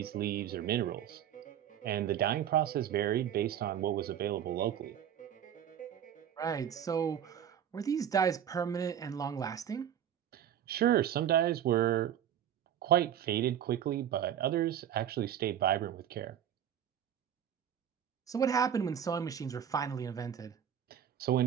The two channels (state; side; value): quieter; left; 9.8 dB